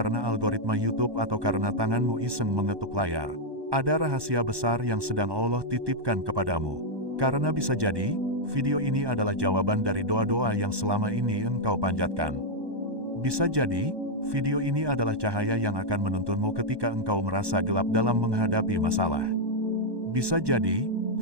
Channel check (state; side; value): late; left; 1.2 ms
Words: algoritma YouTube atau karena tanganmu iseng mengetuk layar. Ada rahasia besar yang sedang Allah titipkan kepadamu. Karena bisa jadi, video ini adalah jawaban dari doa-doa yang selama ini engkau panjatkan. Bisa jadi, video ini adalah cahaya yang akan menuntunmu ketika engkau merasa gelap dalam menghadapi masalah. Bisa jadi,